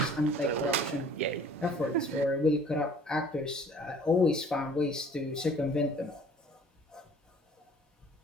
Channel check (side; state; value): both; normal; correlation 0.52